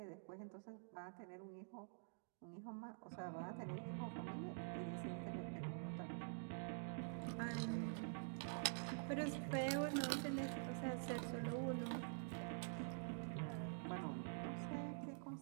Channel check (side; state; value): left; silent; digital silence